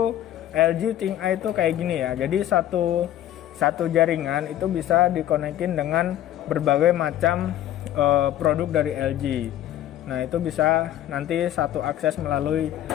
LG ThinkEye itu kayak gini ya. Jadi satu jaringan itu bisa dikonekin dengan berbagai macam produk dari LG. Nah, itu bisa nanti satu akses melalui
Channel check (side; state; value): right; quieter; 12.3 dB